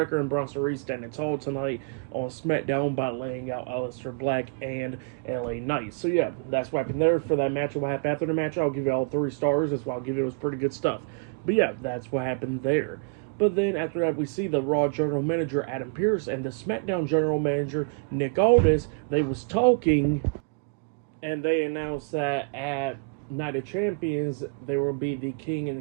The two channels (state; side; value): quieter; left; 36.2 dB